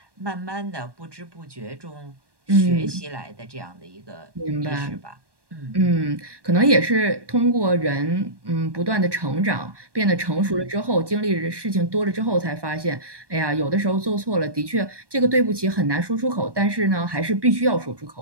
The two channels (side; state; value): left; late; 1.2 ms